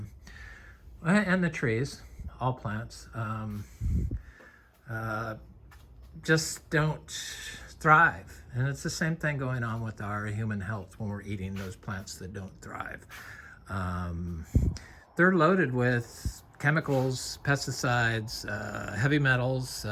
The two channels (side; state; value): both; identical; correlation 1.00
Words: and the trees, all plants, just don't thrive. And it's the same thing going on with our human health when we're eating those plants that don't thrive. They're loaded with chemicals, pesticides, heavy metals